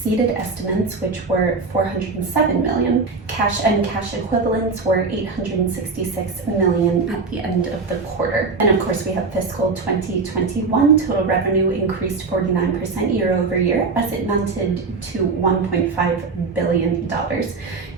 estimates, which were $407 million. Cash and cash equivalents were $866 million at the end of the quarter. And of course, we have fiscal 2021. Total revenue increased 49% year over year, as it mounted to $1.5 billion.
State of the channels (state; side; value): quieter; left; 4.2 dB